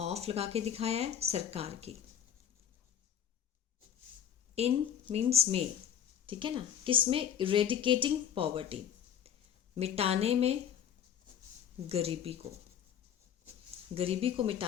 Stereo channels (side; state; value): right; quieter; 9.3 dB